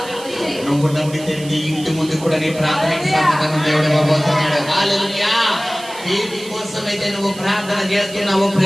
నువ్వు నమ్మితే నీ ఇంటి ముందు కూడా నీ ప్రార్థనకి సమాధానం దేవుడు ఇవ్వబోతున్నాడు. హల్లెలూయా. దేని కోసమైతే నువ్వు ప్రార్థన చేస్తున్నావో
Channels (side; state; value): right; noise; hiss, 16 dB below the sound